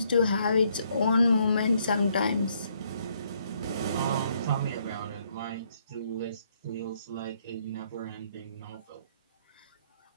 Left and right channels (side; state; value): both; inverted; correlation -0.70